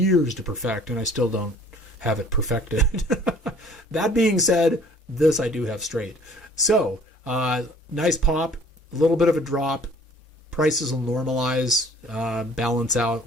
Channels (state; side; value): normal; both; correlation 0.53